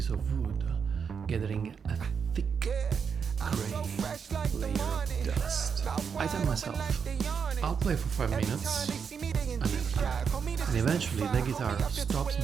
of wood gathering a thick gray layer of dust. I tell myself, I'll play for 5 minutes, I never do. And eventually the guitar stops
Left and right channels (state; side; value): quieter; left; 6.5 dB